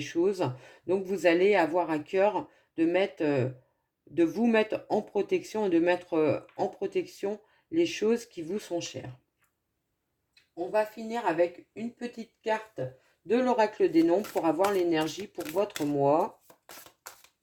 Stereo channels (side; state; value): both; identical; correlation 1.00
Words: Donc vous allez avoir à cœur de vous mettre en protection et de mettre en protection les choses qui vous sont chères. On va finir avec une petite carte de l'oracle des nombres pour avoir l'énergie pour votre mois.